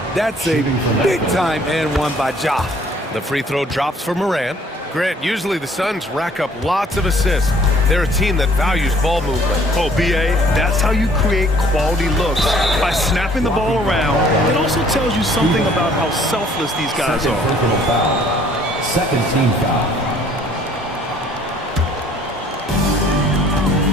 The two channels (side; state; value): both; normal; correlation 0.58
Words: That's a big-time and 1 by Ja. The free throw drops for Morant. Grant, usually the Suns rack up lots of assists. They're a team that values ball movement. Oh, B.A., that's how you create quality looks. By snapping the ball around, it also tells you something about how selfless these guys are. Personal foul. Second team foul.